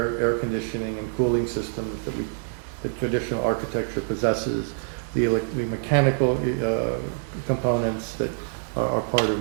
conditioning and cooling systems that the traditional architecture possesses, the mechanical components that are part of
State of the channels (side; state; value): left; silent; 61 dB below the other